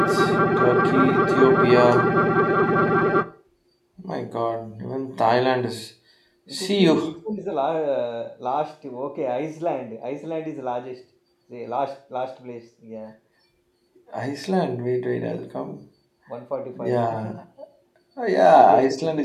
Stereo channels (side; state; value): both; identical; correlation 1.00